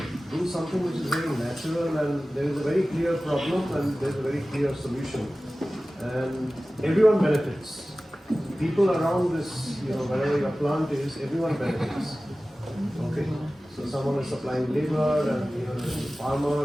Do something which is very natural, and there is a very clear problem and there is a very clear solution, and everyone benefits. People around this, you know, wherever your plant is, everyone benefits. Okay, so someone is supplying labor, and you know, there's the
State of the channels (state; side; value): normal; both; correlation 0.96